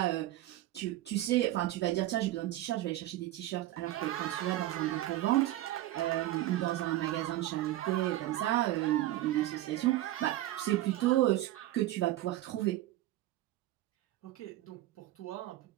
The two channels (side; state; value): left; quieter; 15.1 dB